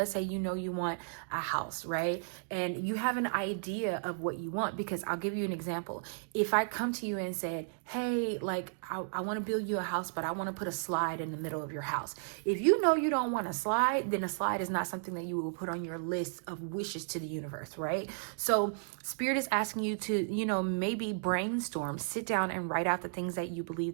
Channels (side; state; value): left; silent; digital silence